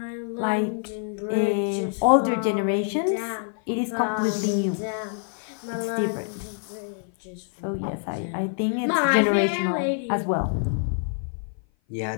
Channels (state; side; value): silent; right; 57 dB below the other